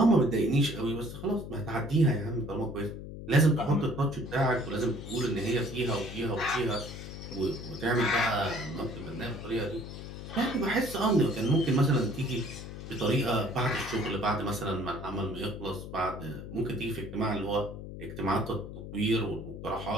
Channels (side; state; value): left; noise; hum, 10 dB below the sound